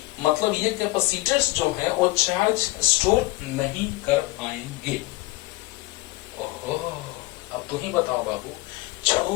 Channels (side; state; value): right; quieter; 20.2 dB